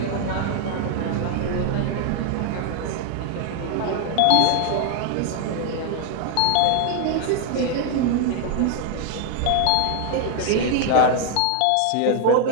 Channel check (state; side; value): different; both; correlation 0.00